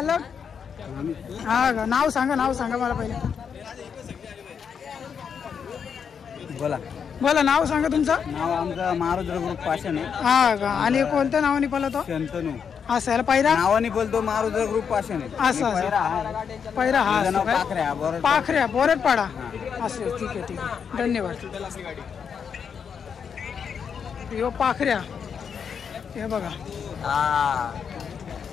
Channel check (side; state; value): right; quieter; 6.9 dB